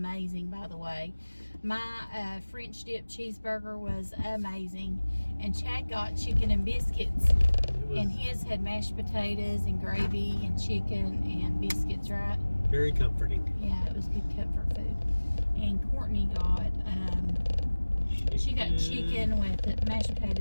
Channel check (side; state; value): both; inverted; correlation -1.00